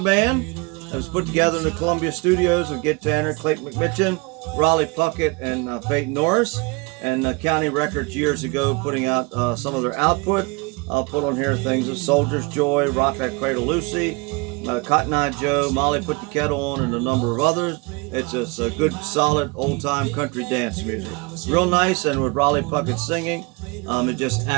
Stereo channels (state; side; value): quieter; left; 28.4 dB